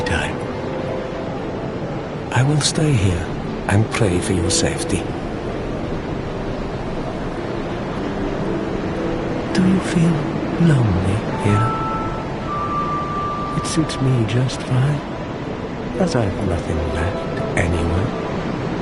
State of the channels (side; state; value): both; identical; correlation 1.00